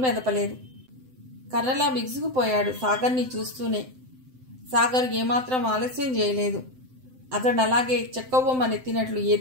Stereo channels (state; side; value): late; left; 7.8 ms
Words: మెదపలేదు. కర్రలా బిగుసుకుపోయాడు సాగర్ని చూస్తూనే. సాగర్ ఏమాత్రం ఆలస్యం చేయలేదు. అతడు అలాగే చెక్కబొమ్మనెత్తినట్లు